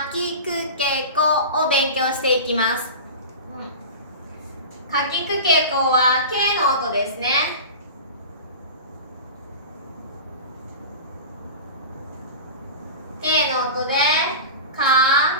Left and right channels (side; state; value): both; inverted; correlation -0.31